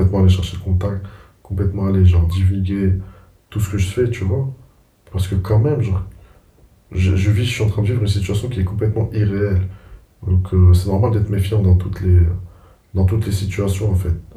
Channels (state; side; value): identical; both; correlation 1.00